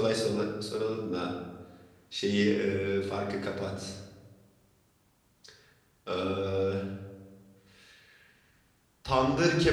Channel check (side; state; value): both; identical; correlation 1.00